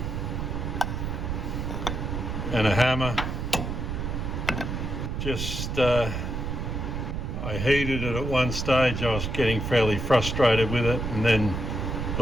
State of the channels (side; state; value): right; noise; rumble, 3 dB below the sound